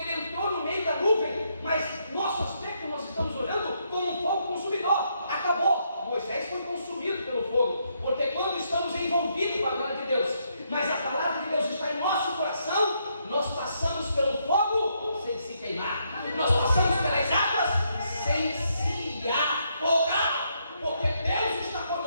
ele entrou no meio da nuvem, mas nosso aspecto nós estamos olhando como um fogo consumidor. Acabou, Moisés foi consumido pelo fogo, porque quando estamos envolvidos com a glória de Deus, mas a palavra de Deus está em nosso coração, nós passamos pelo fogo sem se queimar, nós passamos pelas águas sem se afogar, porque Deus está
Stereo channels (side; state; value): both; inverted; correlation -0.76